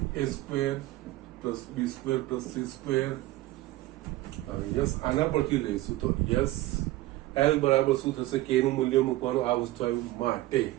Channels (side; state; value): left; quieter; 17.2 dB